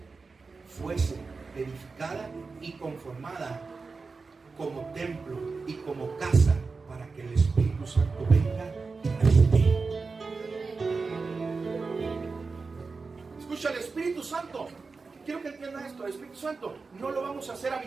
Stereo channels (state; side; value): quieter; left; 4.3 dB